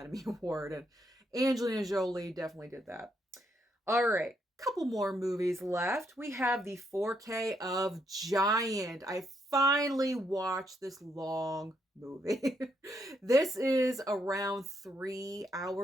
Award. And Angelina Jolie definitely did that. All right. Couple more movies left. We have the 4K of Giant. I finally watched this long movie. This is around 3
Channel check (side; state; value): both; normal; correlation 0.76